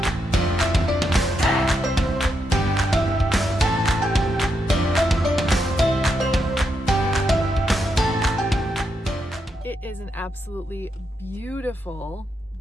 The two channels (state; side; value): normal; both; correlation 0.82